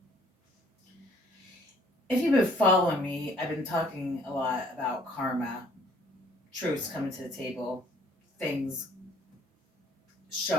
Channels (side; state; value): both; normal; correlation 0.59